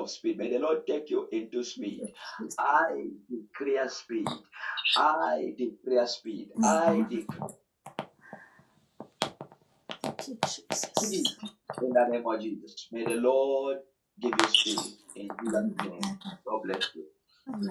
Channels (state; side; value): identical; both; correlation 1.00